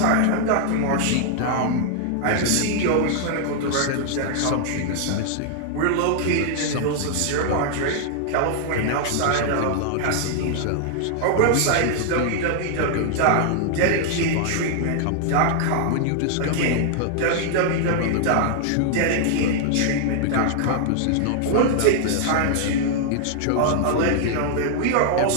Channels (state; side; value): different; both; correlation 0.00